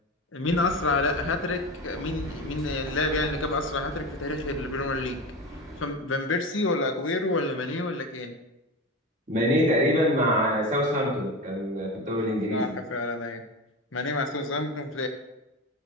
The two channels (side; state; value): both; normal; correlation 0.25